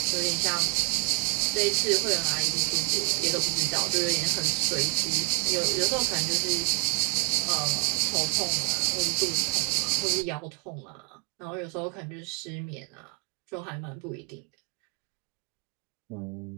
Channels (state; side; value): quieter; left; 36.8 dB